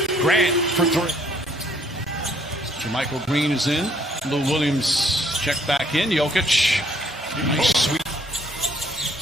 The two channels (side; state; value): both; normal; correlation 0.65